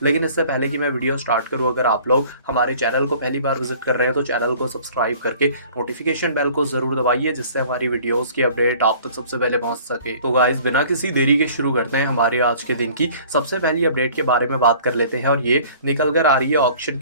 लेकिन इससे पहले कि मैं वीडियो स्टार्ट करूँ, अगर आप लोग हमारे चैनल को पहली बार विजिट कर रहे हैं तो चैनल को सब्सक्राइब करके नोटिफिकेशन बेल को जरूर दबाइए, जिससे हमारी वीडियोस की अपडेट आप तक सबसे पहले पहुंच सके। तो गाइस बिना किसी देरी के शुरू करते हैं हमारे आज के दिन की सबसे पहली अपडेट के बारे में बात कर लेते हैं। और ये निकल कर आ रही है ऑक्शन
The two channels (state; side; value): inverted; both; correlation -0.50